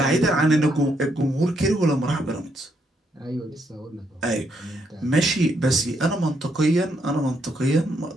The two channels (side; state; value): both; normal; correlation 0.75